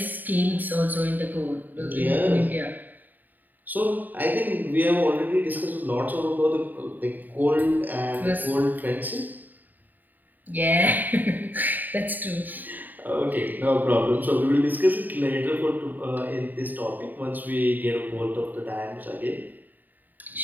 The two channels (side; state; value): left; late; 0.087 ms